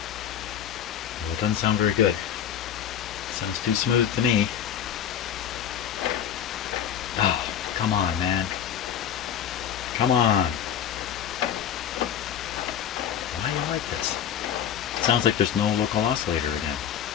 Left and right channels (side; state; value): right; quieter; 9.3 dB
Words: Well, it doesn't sound very good. Sounds too smooth to me. Oh, come on, man. Come on. Why do you like this? It sounds like there's no local oscillator again.